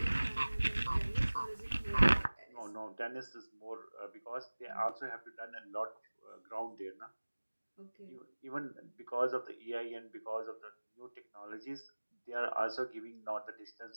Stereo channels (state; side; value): inverted; both; correlation -1.00